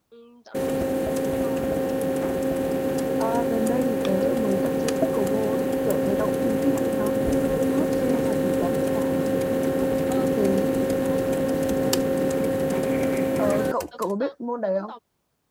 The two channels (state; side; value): identical; both; correlation 1.00